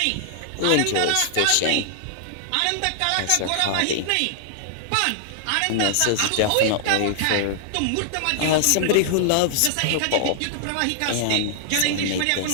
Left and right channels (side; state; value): both; different; correlation -0.01